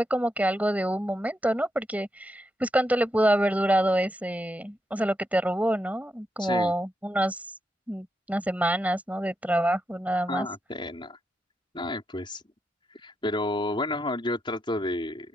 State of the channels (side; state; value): both; normal; correlation 0.84